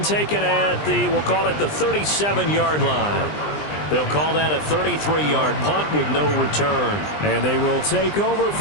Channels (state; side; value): late; right; 20 ms